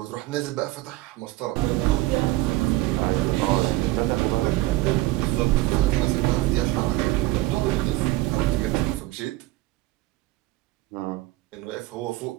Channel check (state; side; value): quieter; left; 18.1 dB